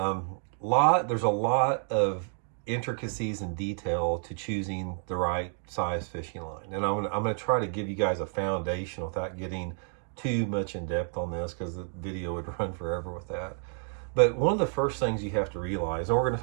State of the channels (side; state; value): left; silent; 58 dB below the other